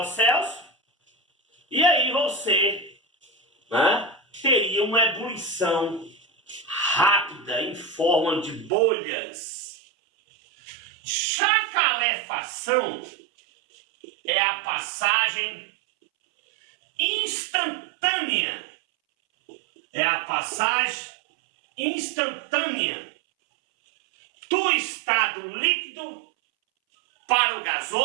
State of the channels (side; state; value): left; drops out; at 8.7 s